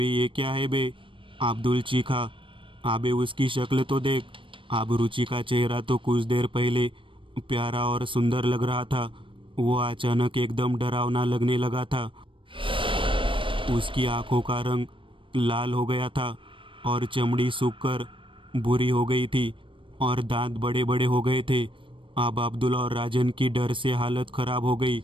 ये क्या है बे? अब्दुल चीखा। अबे उसकी शक्ल तो देख। अब रुचि का चेहरा तो कुछ देर पहले प्यारा और सुंदर लग रहा था, वो अचानक एकदम डरावना लगने लगा था। उसकी आंखों का रंग लाल हो गया था और चमड़ी सूखकर बुरी हो गई थी और दांत बड़े बड़े हो गए थे। अब अब्दुल और राजन की डर से हालत खराब हो गई।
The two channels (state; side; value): late; left; 0.25 ms